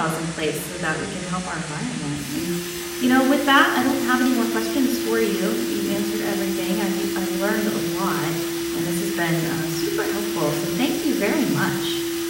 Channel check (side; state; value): both; identical; correlation 1.00